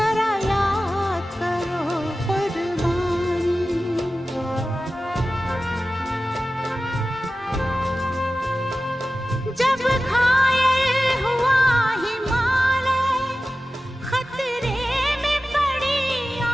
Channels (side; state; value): both; normal; correlation 0.95